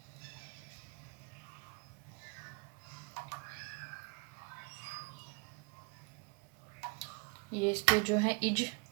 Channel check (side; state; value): left; quieter; 30.4 dB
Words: ये इसके जो हैं